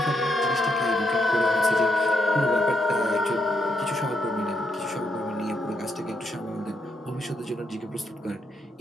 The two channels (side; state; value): both; normal; correlation 0.79